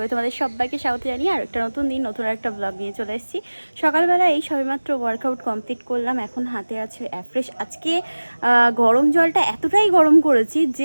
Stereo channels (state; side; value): inverted; both; correlation -1.00